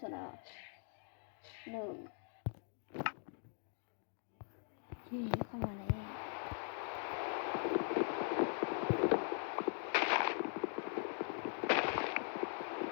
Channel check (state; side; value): silent; right; 50 dB below the other